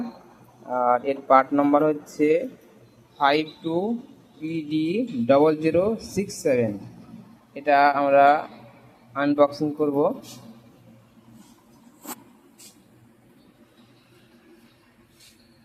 আর এর পার্ট নাম্বার হচ্ছে 52PD0067। এটা আমরা আনবক্সিং করব।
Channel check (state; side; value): identical; both; correlation 1.00